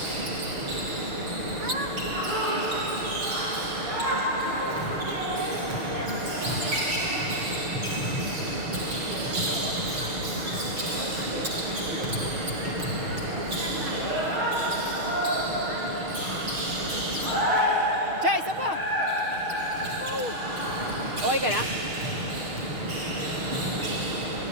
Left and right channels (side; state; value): left; late; 6.5 ms